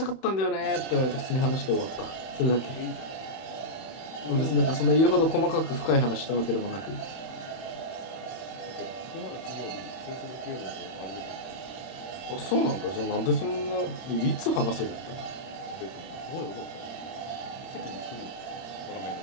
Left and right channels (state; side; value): late; right; 31 ms